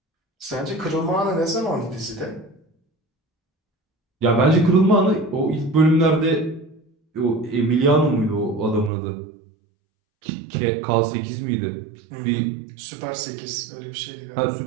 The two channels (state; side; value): drops out; left; at 8.9 s